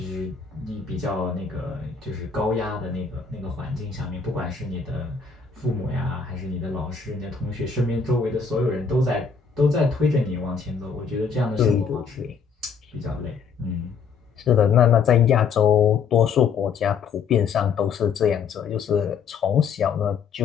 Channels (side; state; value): right; quieter; 6.0 dB